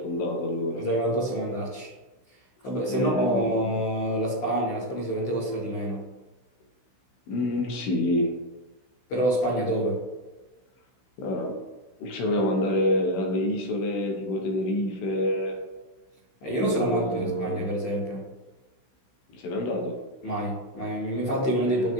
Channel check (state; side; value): late; right; 16 ms